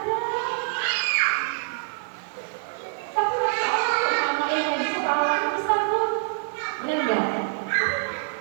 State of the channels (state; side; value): silent; left; digital silence